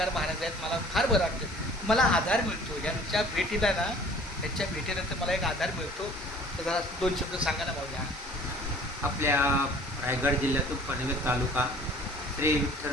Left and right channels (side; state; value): both; normal; correlation 0.50